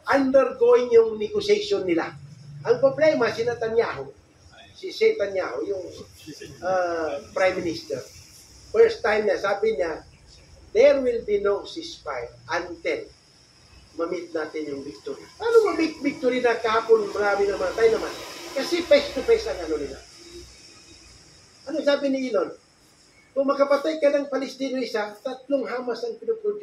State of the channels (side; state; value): both; identical; correlation 1.00